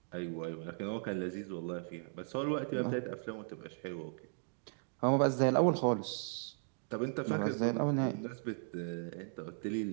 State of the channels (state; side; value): silent; left; digital silence